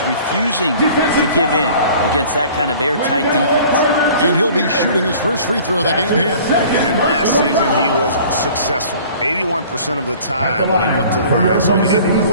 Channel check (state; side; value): inverted; both; correlation -0.48